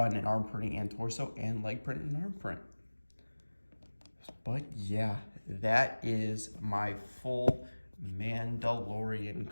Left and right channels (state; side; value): inverted; both; correlation -1.00